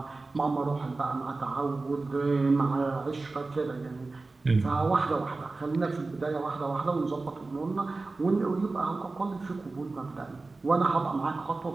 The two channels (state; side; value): quieter; left; 3.5 dB